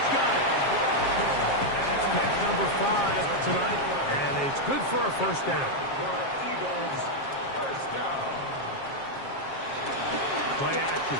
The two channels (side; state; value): right; late; 7.4 ms